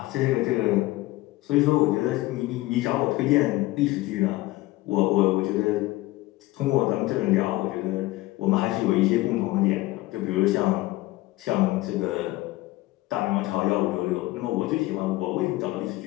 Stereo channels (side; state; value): right; quieter; 18.7 dB